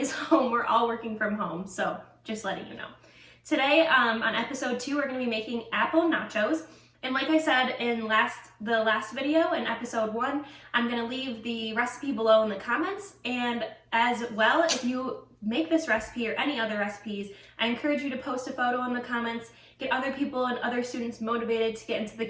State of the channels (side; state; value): both; identical; correlation 1.00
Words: home. We're all working from home, so just letting you know. Today on episode 2, we're going to be making apple nachos. And like I said in the last video, in episode 1, I'm going to leave the recipe below in the comments. And as well, if you make this recipe or any other recipes, I encourage you to post a photo in the comments, get other people and other students motivated to get into the